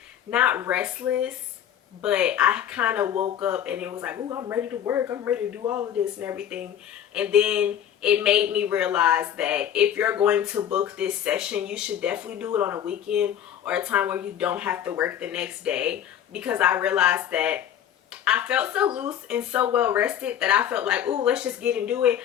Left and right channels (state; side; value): quieter; right; 9.9 dB